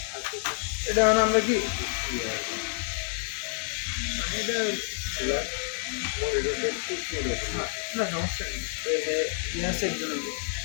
এটা মানে আমরা কি এটা না সমস্যা নেই, ইয়াসের জন্য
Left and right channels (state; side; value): silent; right; 59 dB below the other